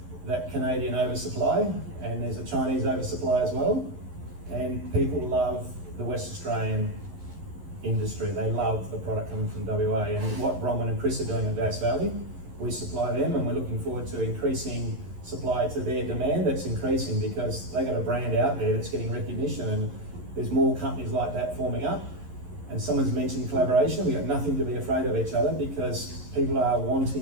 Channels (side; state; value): left; late; 11 ms